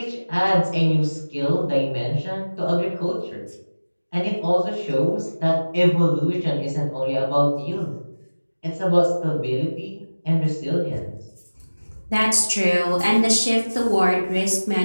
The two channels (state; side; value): inverted; both; correlation -1.00